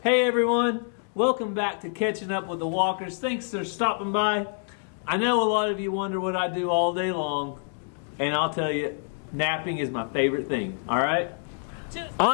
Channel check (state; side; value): silent; right; digital silence